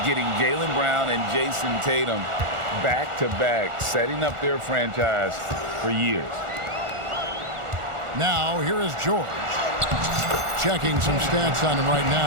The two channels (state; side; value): late; left; 1.4 ms